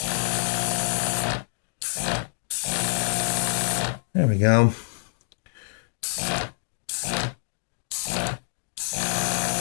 There we go.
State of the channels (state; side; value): silent; right; digital silence